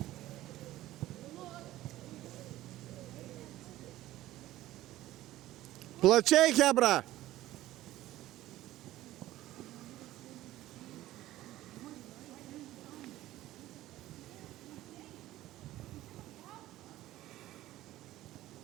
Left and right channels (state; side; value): quieter; left; 15.4 dB